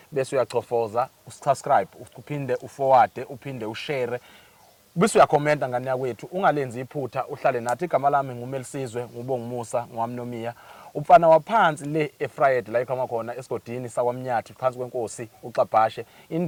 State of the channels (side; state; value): both; identical; correlation 1.00